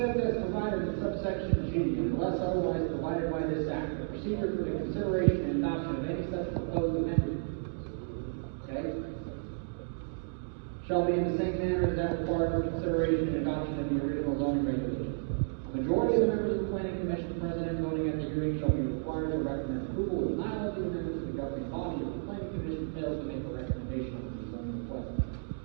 as provided in subsection G, unless otherwise provided by this act, the procedure for the consideration and adoption of any such proposed amendment, okay, shall be in the same manner as that required for consideration and adoption of the original zoning regulation. A majority of the members of the Planning Commission present and voting at the hearing shall be required to recommend approval of denial of the amendment to the governing body if the Planning Commission fails to make a recommendation on the zoning request.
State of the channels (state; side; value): silent; left; digital silence